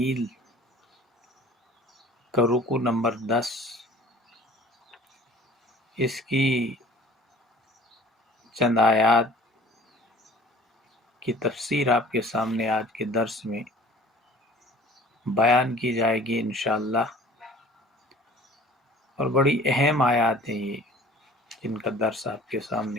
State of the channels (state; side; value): normal; both; correlation 0.47